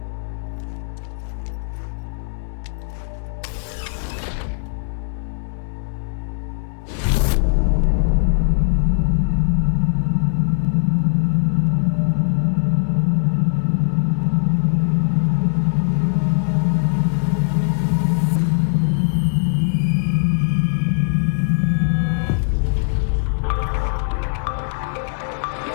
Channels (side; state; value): right; silent; digital silence